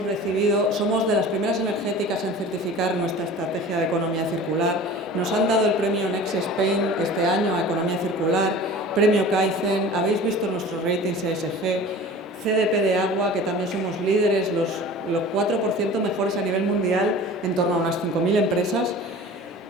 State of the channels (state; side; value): normal; both; correlation 0.40